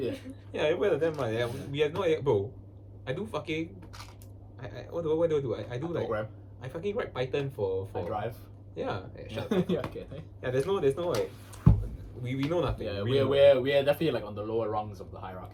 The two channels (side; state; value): both; identical; correlation 1.00